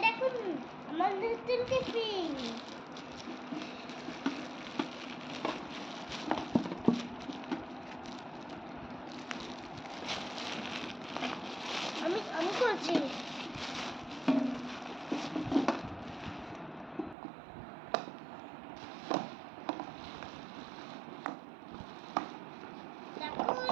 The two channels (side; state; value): left; drops out; at 17.2 s